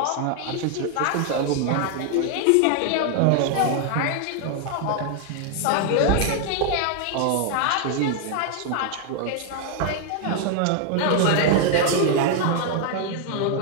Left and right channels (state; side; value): different; both; correlation 0.00